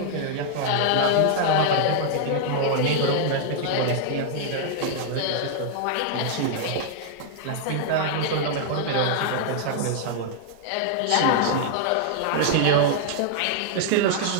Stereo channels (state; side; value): different; both; correlation -0.01